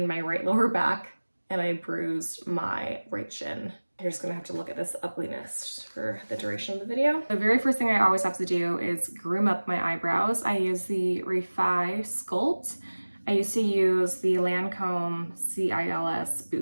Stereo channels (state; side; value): inverted; both; correlation -1.00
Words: my right lower back and I bruised my right shin. You're just gonna have to look at this ugliness for the duration of the video. The very first thing I always have to do is groom up my eyebrows. I use the Refi Sculpt. I used to use the Lancome CILS